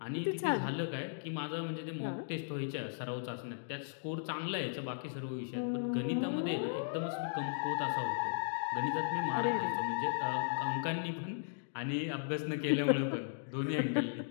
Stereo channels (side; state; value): right; silent; digital silence